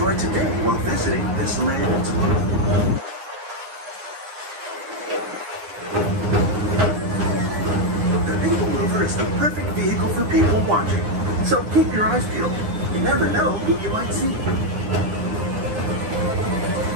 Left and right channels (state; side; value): late; left; 9.7 ms